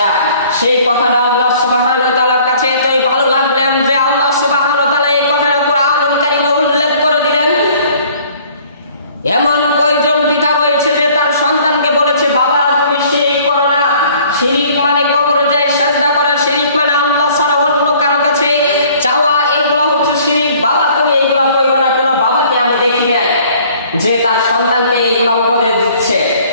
সেই কথাটা আল্লাহ সুবহানাহু ওয়া তাআলার কাছে এতই ভালো লাগলেন যে আল্লাহ সুবহানাহু ওয়া তাআলা এই কথাটা কোরআনুল কারীমে উল্লেখ করে দিলেন। এমন কয়জন পিতা রয়েছে যে তার সন্তানকে বলেছে, বাবা তুমি শিরক করো না। শিরক মানে কবরে যায় সিজদা করা, শিরক মানে আল্লাহ ছাড়া অন্য কারো কাছে চাওয়া, এগুলো হচ্ছে শিরক। বাবা তুমি এগুলো করো না। কোনো বাবাকে আমি দেখি নাই যে তার সন্তানকে এগুলো উপদেশ দিচ্ছে।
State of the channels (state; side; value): inverted; both; correlation -0.55